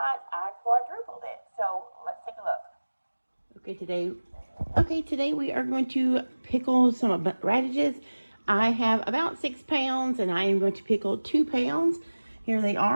I quadrupled it. So let's take a look. Today we are going to pickle some radishes. I have about 6 pounds, and I am going to pickle 2 pounds. Here they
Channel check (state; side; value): inverted; both; correlation -1.00